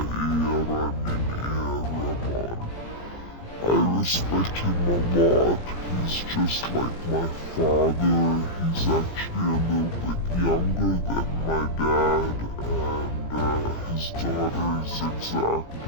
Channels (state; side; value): late; right; 17 ms